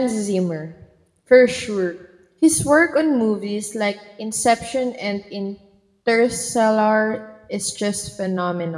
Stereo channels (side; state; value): both; identical; correlation 1.00